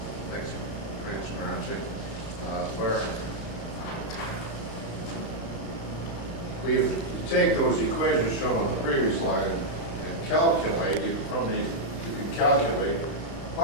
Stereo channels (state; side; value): late; right; 35 ms